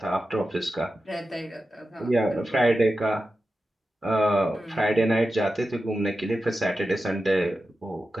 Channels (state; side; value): normal; both; correlation 0.92